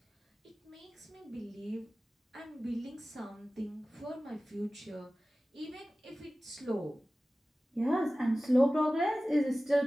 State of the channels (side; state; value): both; normal; correlation 0.97